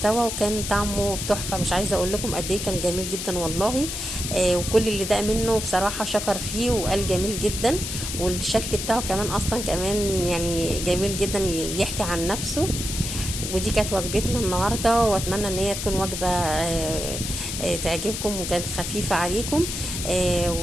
وكان طعمه تحفه، مش عايزه اقول لكم قد ايه كان جميل جدا والله. وكل اللي داق منه بصراحه شكر فيه وقال جميل جدا. والشكل بتاعه كمان اصلا كمان يعني جميل جدا، يحكي عن نفسه. ودي كانت وجبتنا النهارده، واتمنى ان هي تكون وجبه تعجبكم وكانت خفيفه عليكم.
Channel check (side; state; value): left; noise; hiss, 5 dB below the sound